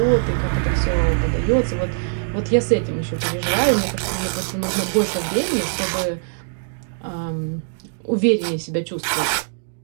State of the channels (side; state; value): left; silent; digital silence